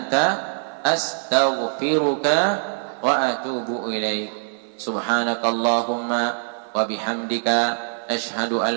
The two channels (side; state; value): left; silent; 58 dB below the other